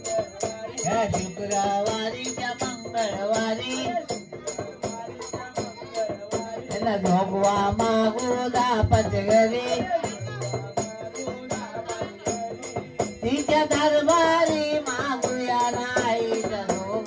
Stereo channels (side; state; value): both; identical; correlation 1.00